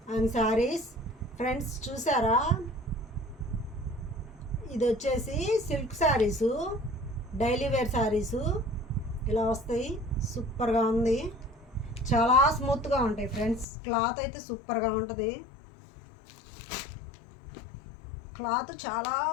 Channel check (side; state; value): right; drops out; at 13.7 s